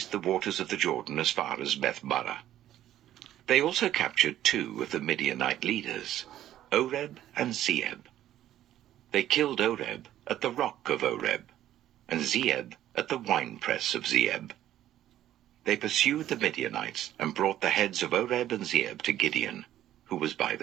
the waters of the Jordan as far as Beth-barah. They also captured 2 of the Midianite leaders, Oreb and Zeeb. They killed Oreb at the rock of Oreb, and Zeeb at the winepress of Zeeb. They pursued the Midianites and brought the heads of Oreb and Zeeb to Gideon, who was by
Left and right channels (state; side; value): quieter; left; 12.5 dB